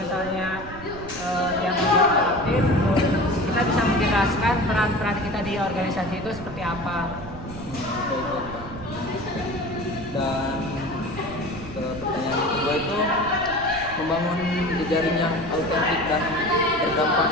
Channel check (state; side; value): noise; right; rumble, 13 dB below the sound